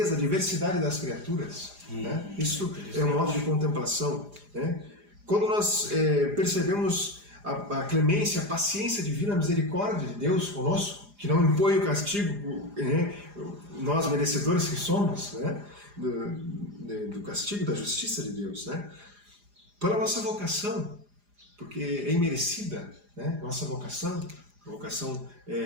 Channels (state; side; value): late; left; 4.9 ms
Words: a diversidade das criaturas, né, isso é um modo de contemplação. Né? Quando nós percebemos a clemência, a paciência divina, a misericórdia de Deus conosco, que não impõe o castigo, né, nós merecedores que somos, né, do castigo, da justiça de Deus, né? Pela nossa vocação, porque é imerecida, né, nossa vocação, vocação